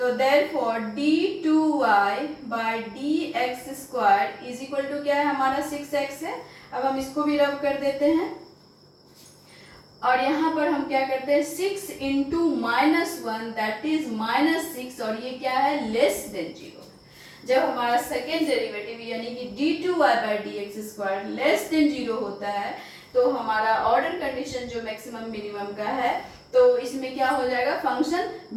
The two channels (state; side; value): identical; both; correlation 1.00